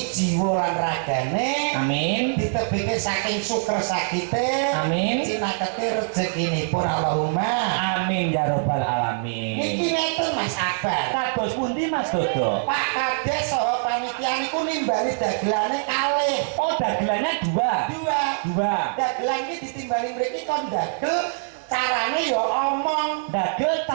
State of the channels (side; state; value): left; silent; digital silence